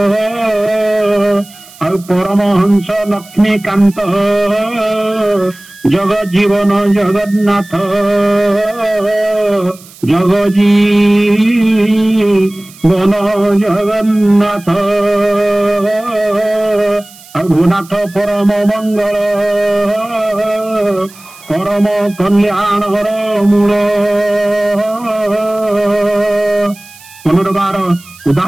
ଆଉ ପରମହଂସ ଲକ୍ଷ୍ମୀକାନ୍ତ ଜଗଜୀବନ ଜଗନ୍ନାଥ ଜଗଜୀବନ ଜଗନ୍ନାଥ ଆଉ ଭୂନାଥ ପରମ ମଙ୍ଗଳ ପରମ କଲ୍ୟାଣର ମୂଳ। ପୁନର୍ବାର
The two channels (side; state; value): right; noise; hiss, 22 dB below the sound